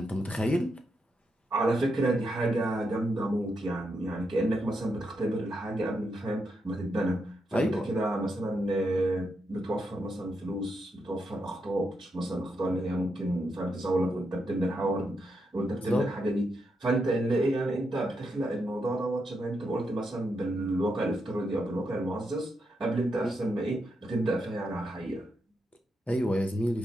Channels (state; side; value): normal; both; correlation 0.83